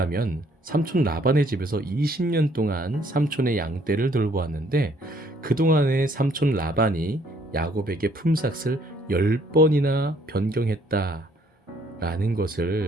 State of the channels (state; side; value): normal; both; correlation 0.64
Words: 삼촌 라반의 집에서 20년 동안 삼촌의 양떼를 돌보았는데 그동안에 삼촌 라반이 야곱에게 품삯을 10번이나 변경했다라는